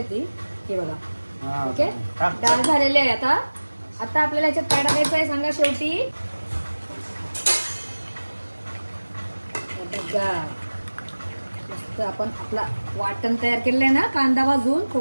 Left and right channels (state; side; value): inverted; both; correlation -1.00